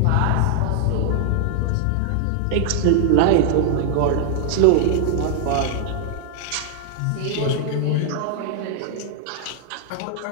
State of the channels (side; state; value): both; different; correlation 0.00